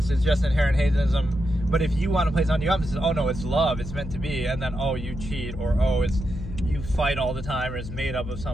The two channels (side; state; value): left; noise; hum, 9 dB below the sound